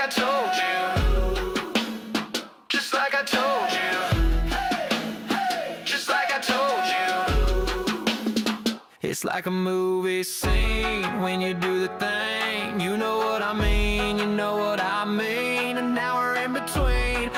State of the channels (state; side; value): identical; both; correlation 1.00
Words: I told you. Just like I told you. Just like I told you. It's like a movie scene when you do the thing. You know what I mean, you know what I mean. And now we're in between.